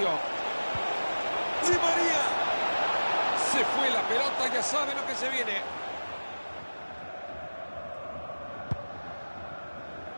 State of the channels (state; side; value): inverted; both; correlation -1.00